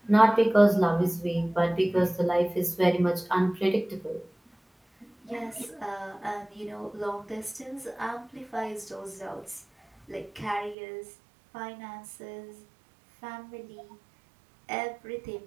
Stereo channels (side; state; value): left; drops out; at 10.8 s